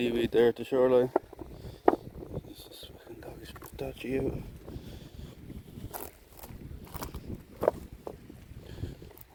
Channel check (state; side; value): identical; both; correlation 1.00